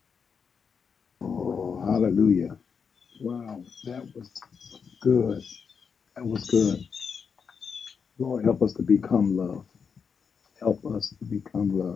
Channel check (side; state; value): right; quieter; 6.2 dB